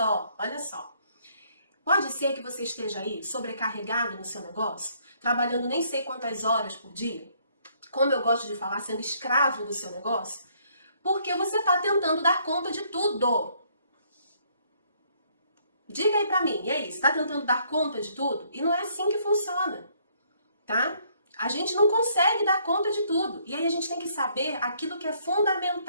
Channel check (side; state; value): both; inverted; correlation -0.66